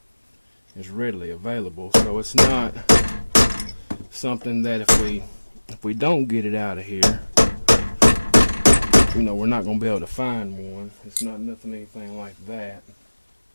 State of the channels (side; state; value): both; inverted; correlation -1.00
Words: is readily available, so it's not something that if we don't get it out of here, you know, we're not going to be able to find one. It's not anything like that.